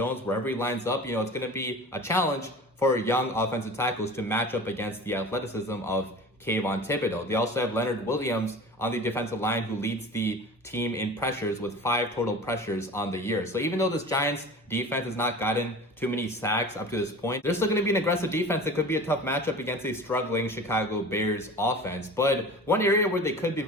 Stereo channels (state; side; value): normal; both; correlation 0.37